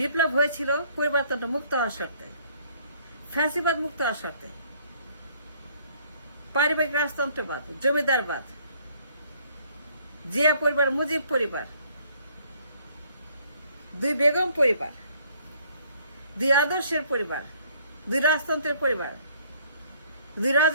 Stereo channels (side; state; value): both; inverted; correlation -0.62